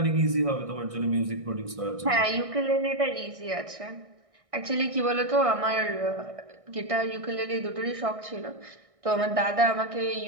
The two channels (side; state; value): left; late; 1.6 ms